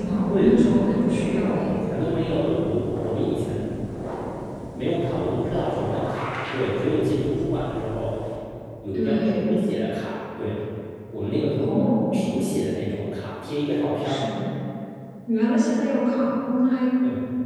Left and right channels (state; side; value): identical; both; correlation 1.00